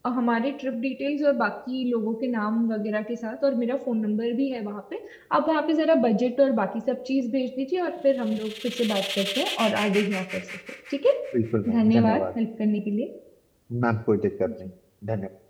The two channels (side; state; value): both; identical; correlation 1.00